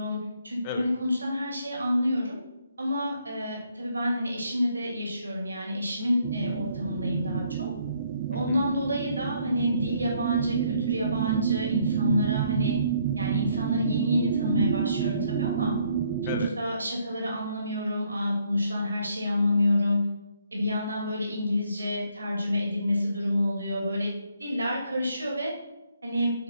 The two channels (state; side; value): inverted; both; correlation -0.69